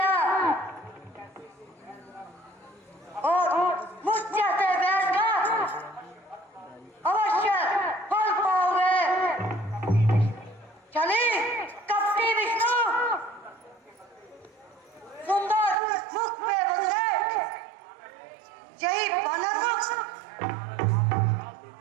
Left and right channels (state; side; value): drops out; left; at 15.8 s